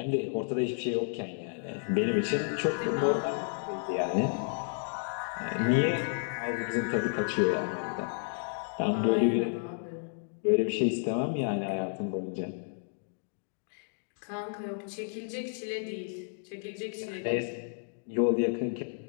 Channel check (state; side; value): silent; right; digital silence